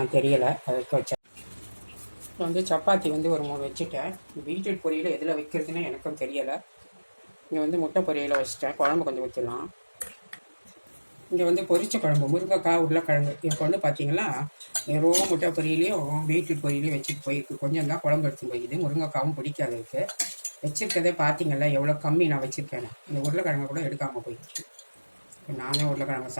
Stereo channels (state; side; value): inverted; both; correlation -1.00